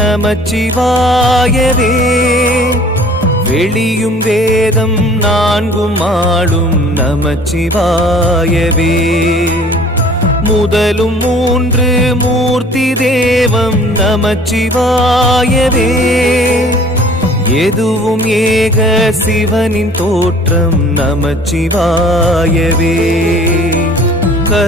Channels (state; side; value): normal; both; correlation 0.50